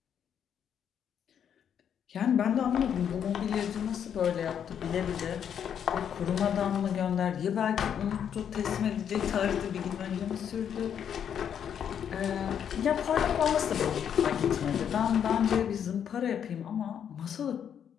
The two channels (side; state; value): right; quieter; 8.5 dB